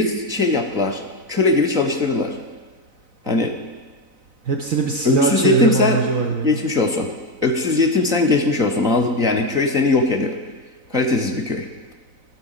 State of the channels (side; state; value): left; late; 4.0 ms